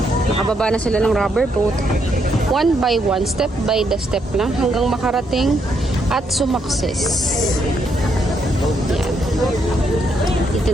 Nakababa na sila ng rubber boat. One by one, step by the step lang hanggang makarating at sumakses. Yan. Dito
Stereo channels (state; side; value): normal; both; correlation 0.76